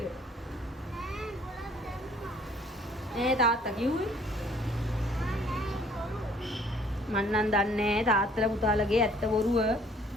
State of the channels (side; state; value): both; normal; correlation 0.58